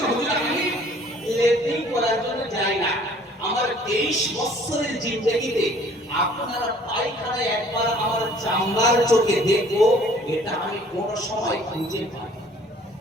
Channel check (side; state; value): both; normal; correlation 0.55